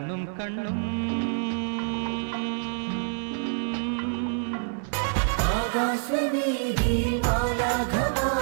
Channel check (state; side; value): silent; left; digital silence